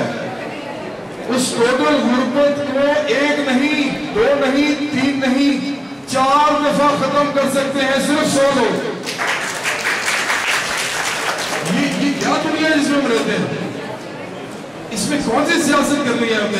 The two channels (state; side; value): identical; both; correlation 1.00